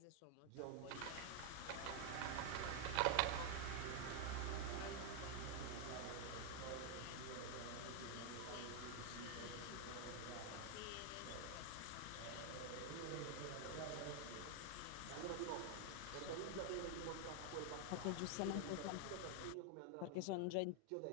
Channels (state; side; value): different; both; correlation 0.00